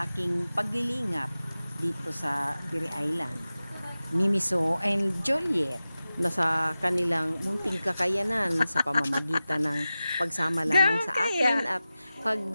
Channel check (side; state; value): both; inverted; correlation -0.95